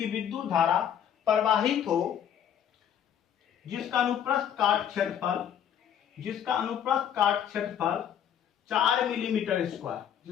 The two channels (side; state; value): right; quieter; 9.3 dB